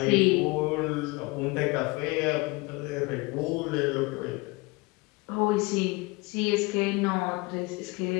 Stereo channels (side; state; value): right; quieter; 25.0 dB